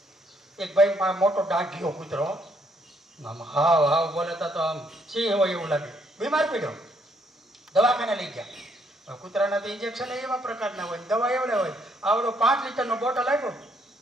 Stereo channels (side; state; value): both; normal; correlation 0.70